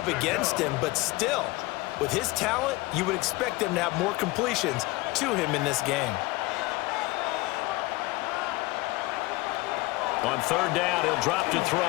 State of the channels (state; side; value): quieter; right; 21.4 dB